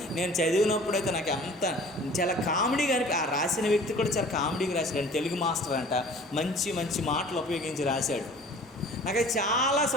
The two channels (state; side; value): normal; both; correlation 0.47